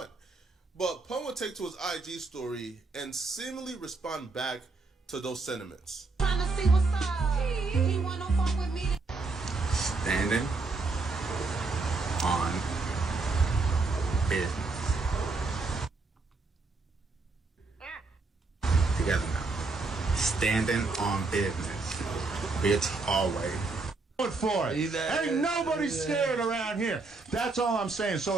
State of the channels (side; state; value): left; quieter; 3.8 dB